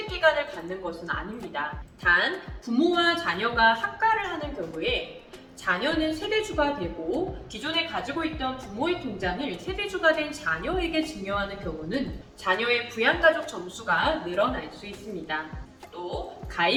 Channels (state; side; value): identical; both; correlation 1.00